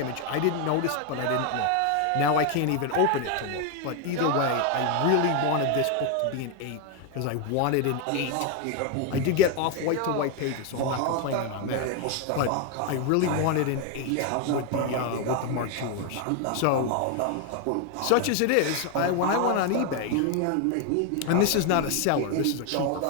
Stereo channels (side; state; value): both; different; correlation 0.01